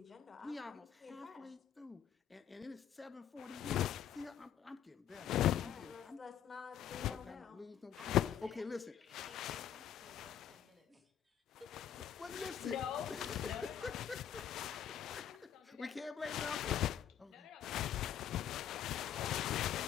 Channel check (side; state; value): right; quieter; 9.5 dB